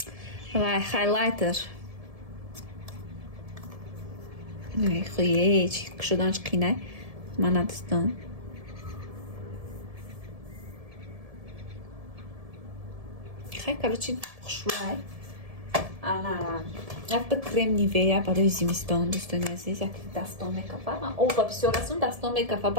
хайлайтер. хуе чи кушоданш қинай. мана дӯстон хай короче хушбӯй. ана якта крем нивея барои зимистон. дӯстони азиз, як дастон мекафа. ман оба бисёр расум дастон мекафа.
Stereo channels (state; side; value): late; left; 1.7 ms